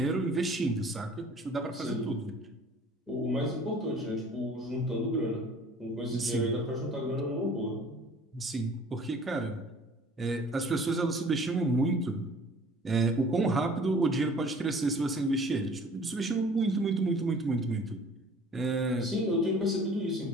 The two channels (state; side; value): normal; both; correlation 0.50